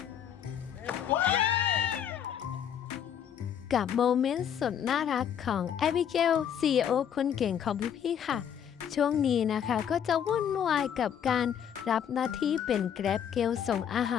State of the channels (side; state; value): right; quieter; 8.8 dB